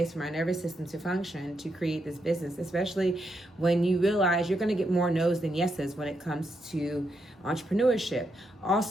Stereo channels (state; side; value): normal; both; correlation 0.81